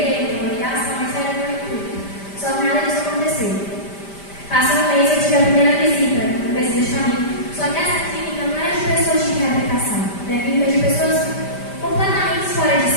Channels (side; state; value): right; late; 5.0 ms